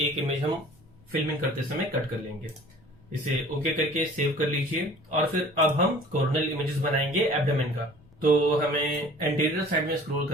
इमेज हम फिल्मिंग करते समय कट कर लेंगे। इसे ओके करके सेव कर लीजिए और फिर अब हम कॉर्नल इमेजेस बनाएंगे एब्डोमेन का। तो हमें एंटीरियर साइड में स्क्रॉल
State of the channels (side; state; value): left; noise; rumble, 27 dB below the sound